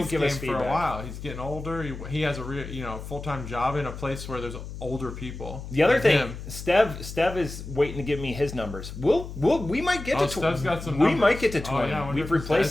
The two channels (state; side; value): noise; left; hum, 10 dB below the sound